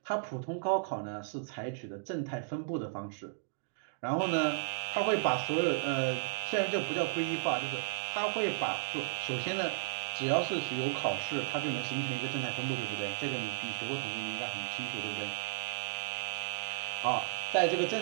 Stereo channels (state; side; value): silent; left; digital silence